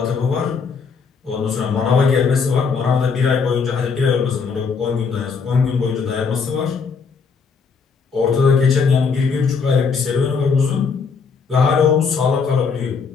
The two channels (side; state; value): right; quieter; 5.4 dB